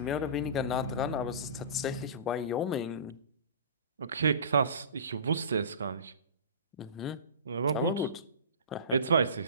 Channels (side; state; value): both; inverted; correlation -0.36